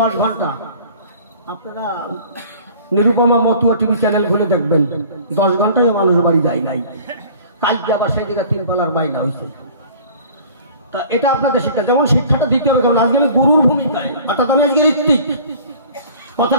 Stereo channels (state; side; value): inverted; both; correlation -0.47